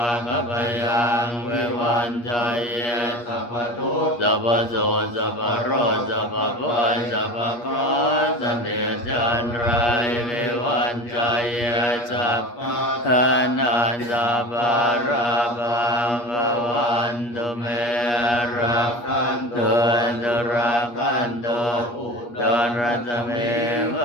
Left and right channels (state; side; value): late; right; 8.4 ms